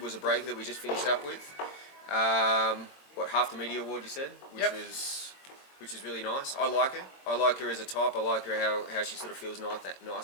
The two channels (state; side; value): late; right; 22 ms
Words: was a breaker that we just finished up with. Half the media award you said, which is really nice. I like her. I like her as a type. I like her how she sort of feels